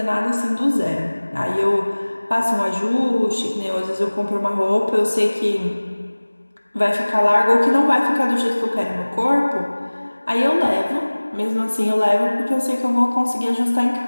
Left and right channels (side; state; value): both; inverted; correlation -1.00